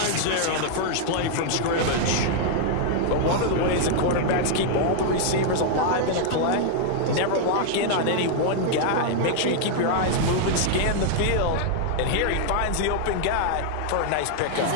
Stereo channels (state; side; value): different; both; correlation 0.00